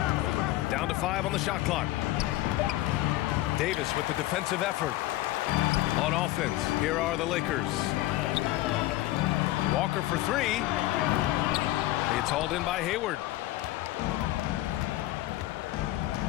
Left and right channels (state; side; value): quieter; right; 16.6 dB